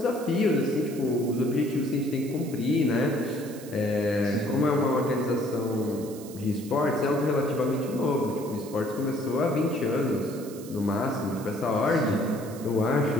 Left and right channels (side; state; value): right; noise; hiss, 18 dB below the sound